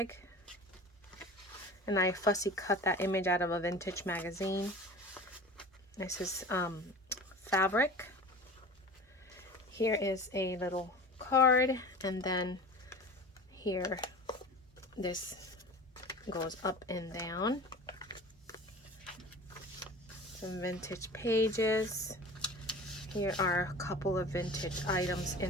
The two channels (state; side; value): normal; both; correlation 0.37